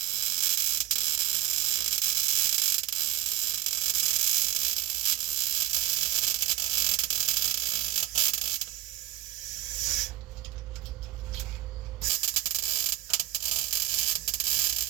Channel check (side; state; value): left; quieter; 12.7 dB